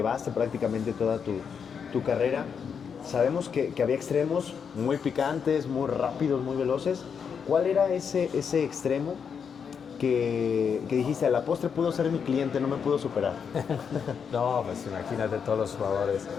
prácticamente toda tu carrera, sabemos que había extremos muy picantes, muy rápidos, muy veloces. ¿Cuál era ese extremo que dijiste, a la postre pudo ser mi cliente, no me pudo superar? No, pues imagínate todos los jugadores.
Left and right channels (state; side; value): quieter; right; 6.8 dB